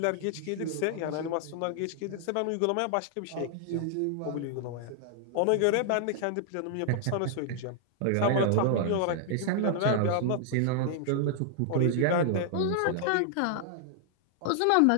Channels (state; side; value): different; both; correlation -0.01